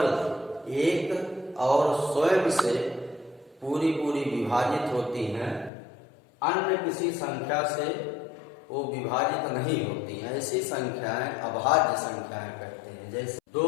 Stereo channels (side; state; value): right; drops out; at 5.7 s